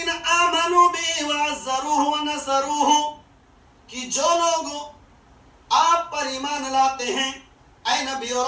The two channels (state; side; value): identical; both; correlation 1.00